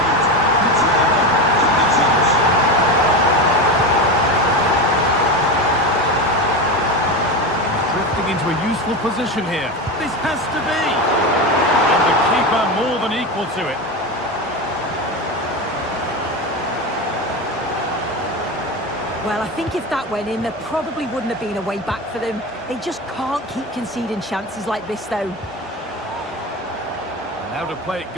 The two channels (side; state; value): both; normal; correlation 0.20